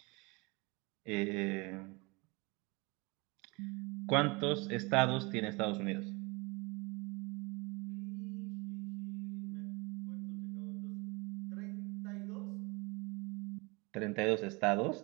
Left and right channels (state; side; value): quieter; left; 27.0 dB